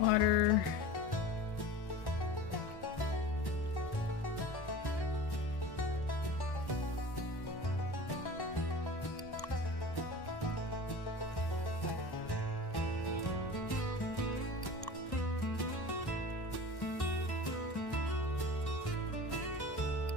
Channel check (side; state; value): right; late; 1.1 ms